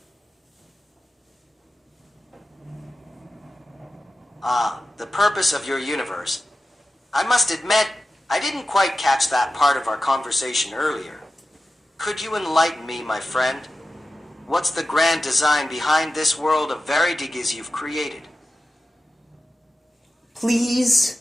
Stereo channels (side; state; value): both; normal; correlation 0.93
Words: The purpose of your universe. I must admit, I didn't quite catch that part of our conversation earlier. Could you enlighten me, my friend? What's the grand design behind this world of Veridigas you've created?